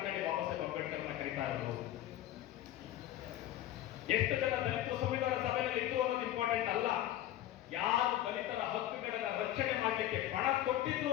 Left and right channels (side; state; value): right; quieter; 13.1 dB